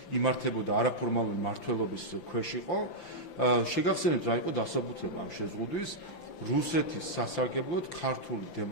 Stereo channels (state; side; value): late; right; 5.9 ms